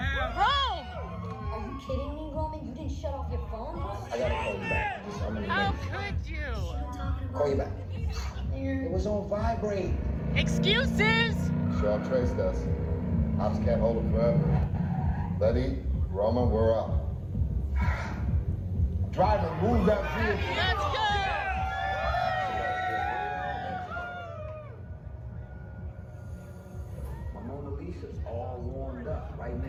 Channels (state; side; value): identical; both; correlation 1.00